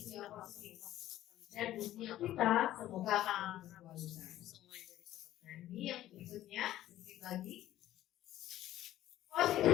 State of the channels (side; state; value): right; quieter; 13.6 dB